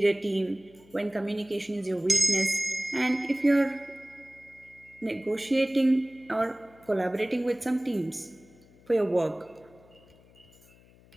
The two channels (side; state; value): left; noise; hum, 27 dB below the sound